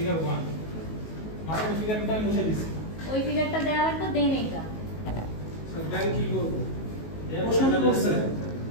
1 মাঝখানে ফিগারটা আমি মুছে দিছি ওই ফিগারটা দেওয়া লাগবে দেন এটা স্যার দেন কি করব প্রশ্ন কি করছে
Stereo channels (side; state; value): right; late; 19 ms